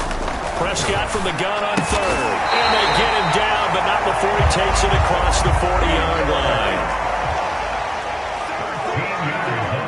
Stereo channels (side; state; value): both; identical; correlation 1.00